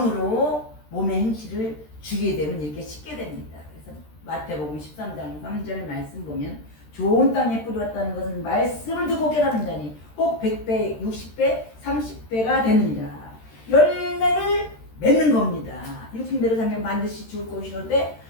몸의 행실을 주게 되면 이렇게 씻게 됩니다. 그래서 마태복음 13장 3절 말씀 보면 좋은 땅에 뿌렸다는 것은 말씀을 듣고 깨닫는 자니 혹 100배, 60배, 30배가 되느니라. 열매를 맺는 겁니다. 육신대로 살면 반드시 죽을 것이로되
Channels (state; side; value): late; right; 13 ms